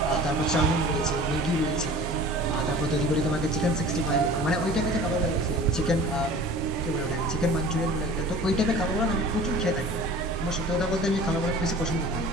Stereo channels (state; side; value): normal; both; correlation 0.42